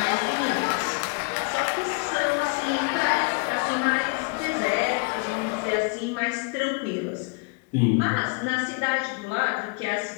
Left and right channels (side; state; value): right; quieter; 32.5 dB